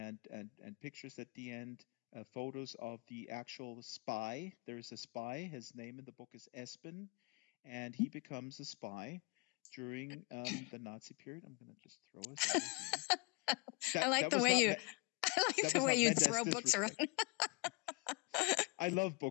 pictures at the end, photos of the actual spy. There is a spy. His name in the book is Espen, and he becomes a spy during the Nazi period. I'm going to just throw this over here. I like the way you throw books around. I love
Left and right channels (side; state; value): right; quieter; 28.2 dB